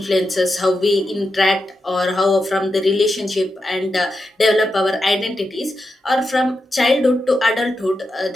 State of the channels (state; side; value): normal; both; correlation 0.87